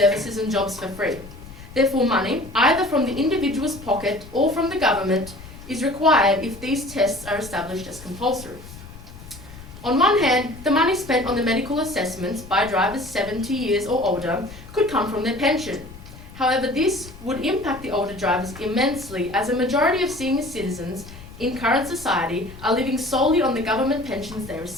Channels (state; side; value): noise; left; rumble, 17 dB below the sound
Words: and jobs for free. Therefore, money, either from the individual's pocket or from the government, is required if these tests are established as compulsory. On one hand, the money spent on the medical assessments by drivers 70 years or older could come from their pension. However, this would impact the older drivers immensely, as a majority of senior citizens in current society are living solely on the government pensions they